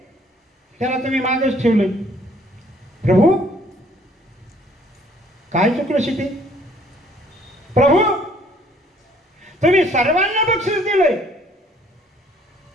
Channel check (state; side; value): normal; both; correlation 0.60